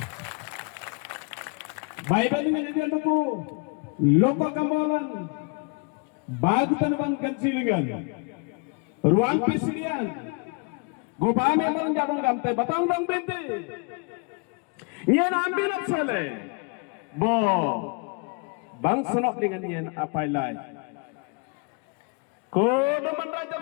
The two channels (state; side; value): quieter; right; 33.1 dB